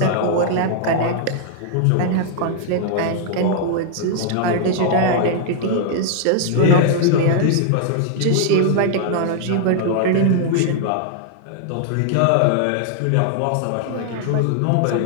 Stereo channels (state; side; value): different; both; correlation -0.01